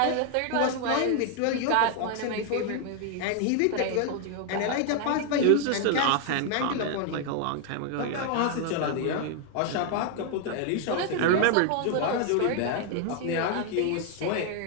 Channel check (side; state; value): both; different; correlation 0.00